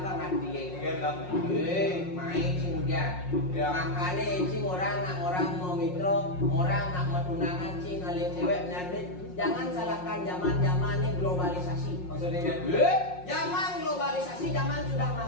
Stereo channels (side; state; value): right; late; 5.6 ms